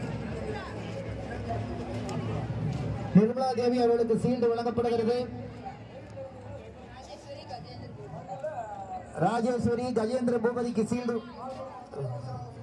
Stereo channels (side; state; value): both; identical; correlation 1.00